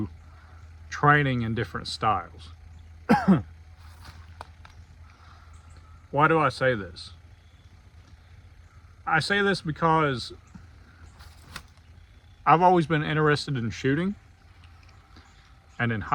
training in different styles. Why do I say this? I say this because I've always been interested in shooting. And in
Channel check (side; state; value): both; identical; correlation 1.00